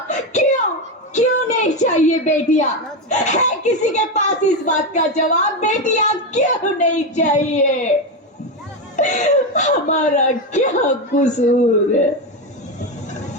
क्यों नहीं चाहिए बेटियां? है किसी के पास इस बात का जवाब? बेटियां क्यों नहीं चाहिए? हमारा क्या कसूर है?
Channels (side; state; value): both; normal; correlation 0.12